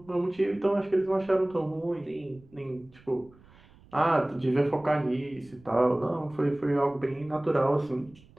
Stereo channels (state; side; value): noise; right; rumble, 26 dB below the sound